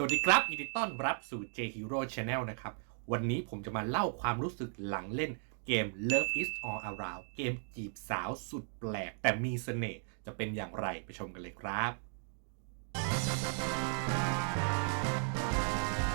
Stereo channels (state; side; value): silent; left; 54 dB below the other